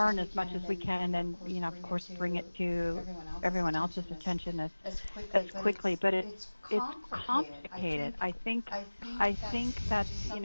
as much as we can, and of course, bring it to everyone else's attention as quickly. But it's complicated. I think that's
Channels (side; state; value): both; inverted; correlation -1.00